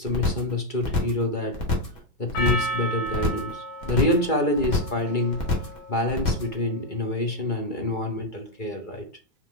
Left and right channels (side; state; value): right; late; 2.3 ms